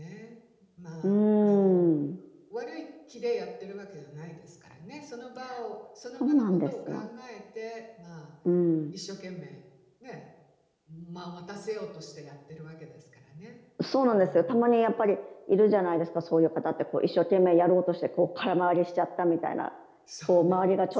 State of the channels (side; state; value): both; identical; correlation 1.00